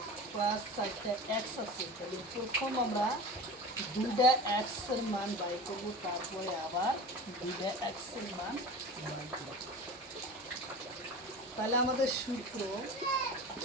প্লাস 4টে x আছে তাহলে প্রথম আমরা 2টা x এর মান বাই করব তারপরে আবার 2টা x এর মান বাই করব। তাহলে আমাদের সূত্র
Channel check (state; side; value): normal; both; correlation 0.34